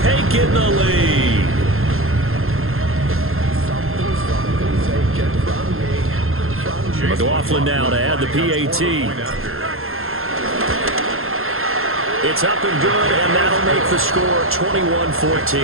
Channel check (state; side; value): late; left; 0.61 ms